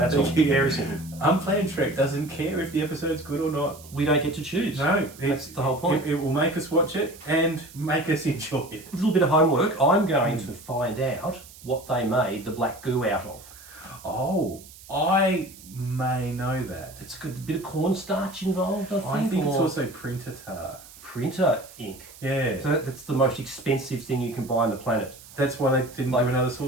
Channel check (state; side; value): noise; right; hiss, 20 dB below the sound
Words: all. Very simple. Unplanned Trek doesn't care if the episode's good or not. We don't get to choose. No, that's the whole point. It will make us watch it and make us enjoy it. A little bit of homework. I'm going to find out what they made the black goo out of. Oh, I may know that. It's got a bit of cornstarch involved, I think. I think it's also printer tar. Printer ink. Yeah. So that's the most expensive thing you can buy on the planet. That's why they didn't do another